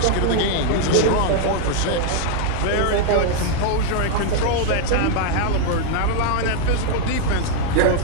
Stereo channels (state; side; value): different; both; correlation 0.00